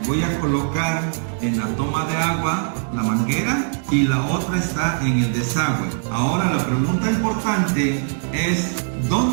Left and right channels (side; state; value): left; silent; digital silence